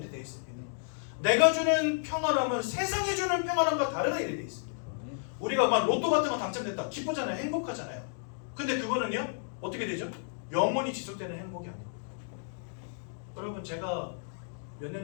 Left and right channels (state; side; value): silent; right; digital silence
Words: 되어 있습니다. 내가 주는 평안함은 세상이 주는 평안함과 다르다 이렇게 되어 있습니다. 우리가 막 로또 같은 거 당첨됐다 기쁘잖아요. 행복하잖아요. 근데 그거는요 어떻게 되죠? 영원히 지속되는 행복이 아닙니다. 여러분 제가 몇